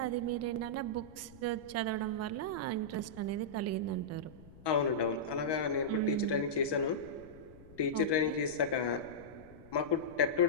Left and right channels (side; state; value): left; noise; rumble, 21 dB below the sound